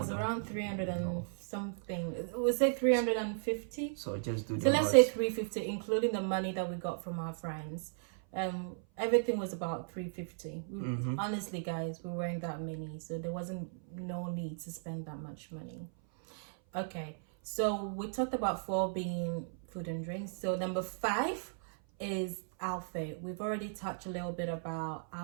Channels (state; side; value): silent; left; 54 dB below the other